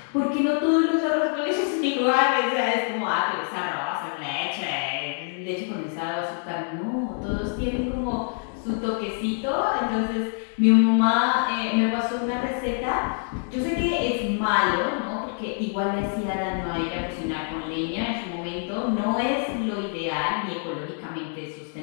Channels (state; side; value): silent; right; 58 dB below the other